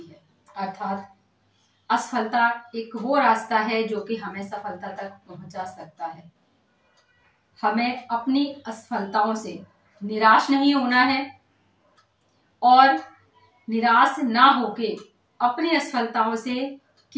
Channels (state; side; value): identical; both; correlation 1.00